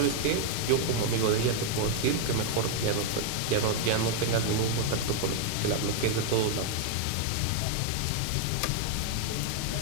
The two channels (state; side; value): different; both; correlation 0.00